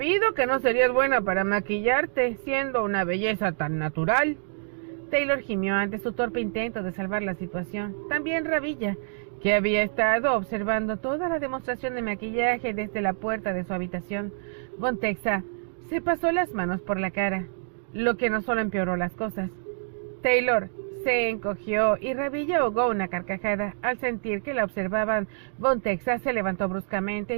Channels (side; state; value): left; silent; digital silence